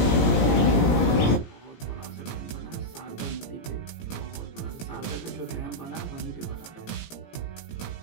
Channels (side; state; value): right; late; 17 ms